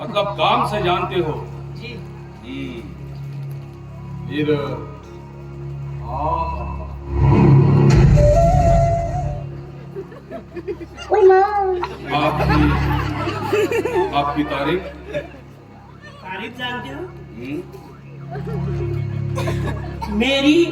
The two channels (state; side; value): identical; both; correlation 1.00